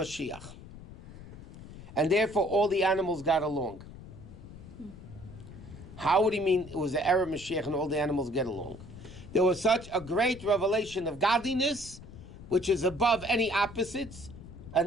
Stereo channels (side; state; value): left; noise; rumble, 16 dB below the sound